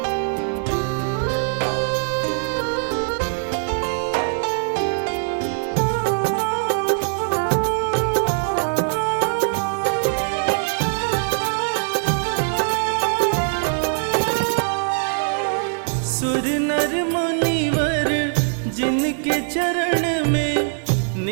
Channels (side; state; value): left; silent; 56 dB below the other